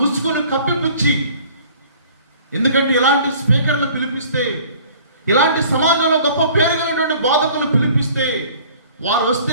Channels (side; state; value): both; inverted; correlation -0.50